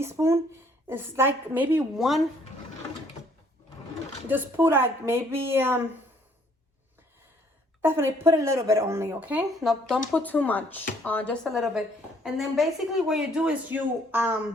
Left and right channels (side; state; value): both; normal; correlation 0.62